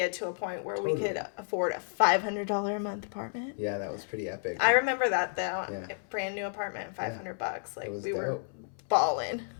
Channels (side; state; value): right; silent; 57 dB below the other